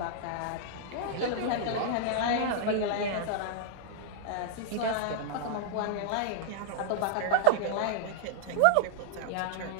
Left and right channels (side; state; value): both; different; correlation -0.01